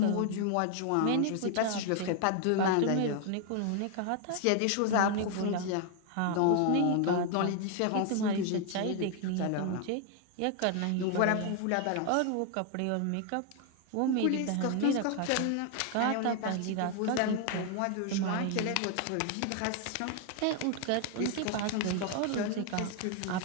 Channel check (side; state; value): both; different; correlation 0.00